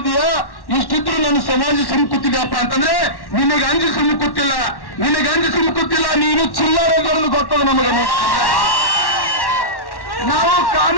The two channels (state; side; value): late; right; 1.1 ms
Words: ಇಷ್ಟಿದ್ರು ನನ್ನ ಸಮಾಜ ಸುಮ್ಕುತ್ತಿದೆಯಪ್ಪ ಅಂತಂದ್ರೆ ನಿನಗೆ ಅಂಜು ಸುಮ್ಕುತ್ತಿಲ್ಲ, ನಿನಗೆ ಅಂಜು ಸುಮ್ಕುತ್ತಿಲ್ಲ. ನೀನು ಚಿಲ್ಲರೆಗಳನ್ನು ಗೊತ್ತದ ನಮಗೆ. ನಾವು